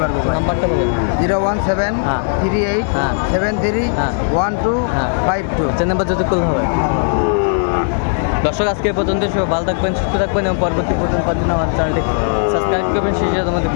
পারবো ভাই। নাম্বারটা বলেন। 01738 হ্যাঁ। 73 হ্যাঁ। 1252। চেন নাম্বার যদি করলে হবে। দর্শক আজকে এই পর্যন্ত সবাই ভালো থাকবেন, সুস্থ থাকবেন এবং পরবর্তী পর্যন্ত আমার চ্যানেলটি সাবস্ক্রাইব করবেন। সেই সাথে আমাদের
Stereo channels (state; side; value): silent; right; 56 dB below the other